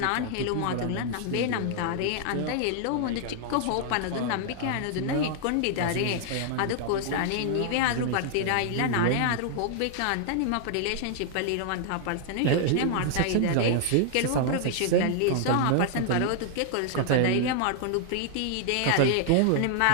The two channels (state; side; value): different; both; correlation -0.01